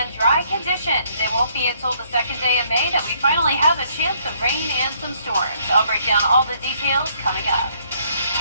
dry conditions. It won't be until the second day of May that we finally have a chance of rain and some storms. I'll break down all the details coming up.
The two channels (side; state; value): both; inverted; correlation -0.67